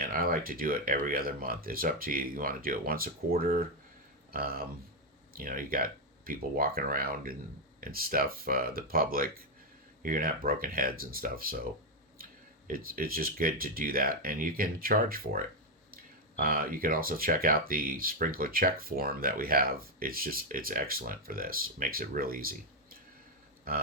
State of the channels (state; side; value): normal; both; correlation 0.03